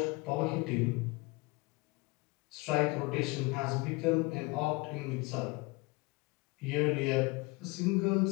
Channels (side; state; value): right; quieter; 25.0 dB